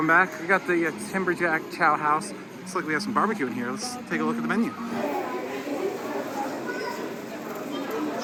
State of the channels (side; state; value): both; identical; correlation 1.00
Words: back, we got the Timberjack Chow House. Looks like we have some barbecue in here. Let's take a look at the menu.